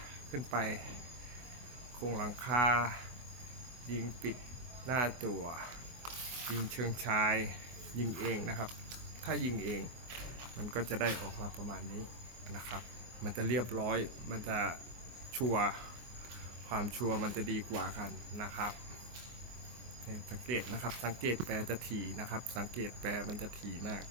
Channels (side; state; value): left; late; 24 ms